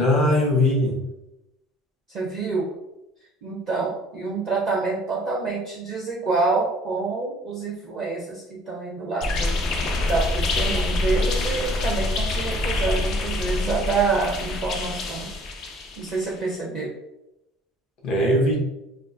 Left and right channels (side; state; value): both; normal; correlation 0.55